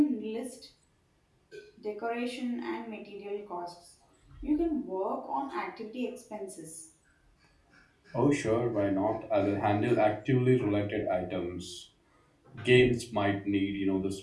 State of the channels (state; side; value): identical; both; correlation 1.00